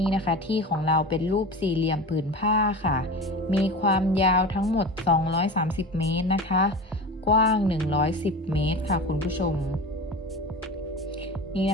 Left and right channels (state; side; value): normal; both; correlation 0.31